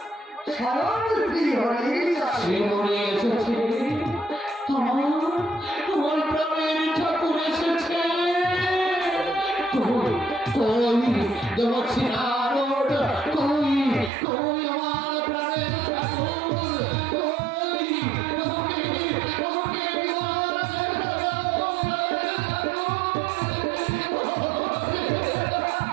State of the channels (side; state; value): left; drops out; at 14.1 s